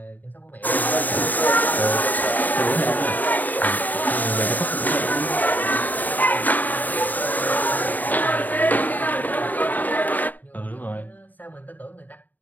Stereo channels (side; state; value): right; late; 0.084 ms